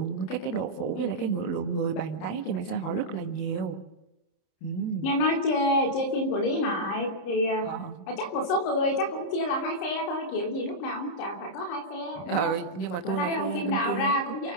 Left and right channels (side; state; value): right; late; 30 ms